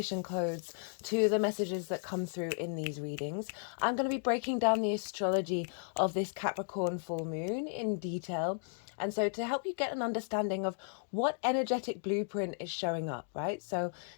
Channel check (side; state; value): right; silent; digital silence